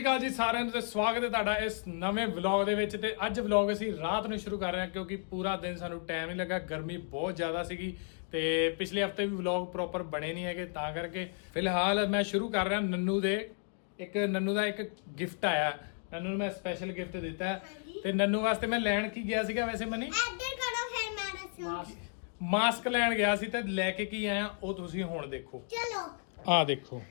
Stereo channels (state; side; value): silent; right; 56 dB below the other